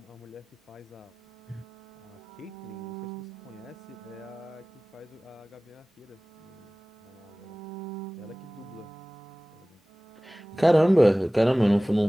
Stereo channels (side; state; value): both; normal; correlation 0.98